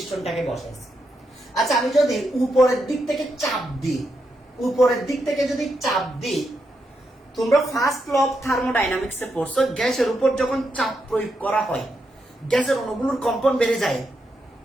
বসাইছি। আচ্ছা, আমি যদি উপরের দিক থেকে চাপ দিই, উপরের দিক থেকে যদি চাপ দিই, তোমরা ফার্স্ট ল অফ থার্মোডাইনামিক্সে পড়ছো, গ্যাসের উপর যখন চাপ প্রয়োগ করা হয় গ্যাসের অণুগুলোর কম্পন বেড়ে যায়,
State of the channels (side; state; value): both; normal; correlation 0.83